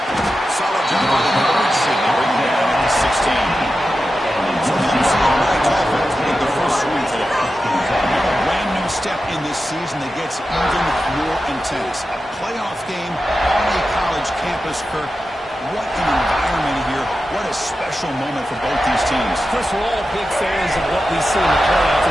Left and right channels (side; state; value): both; normal; correlation 0.91